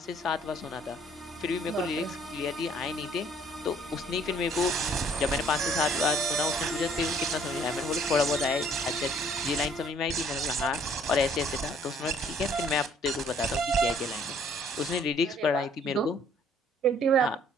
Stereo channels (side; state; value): both; normal; correlation 0.60